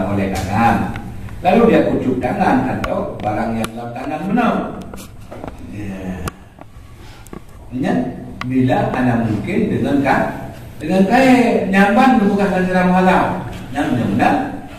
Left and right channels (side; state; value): both; identical; correlation 1.00